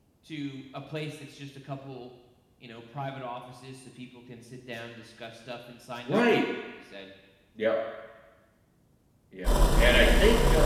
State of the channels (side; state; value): both; identical; correlation 1.00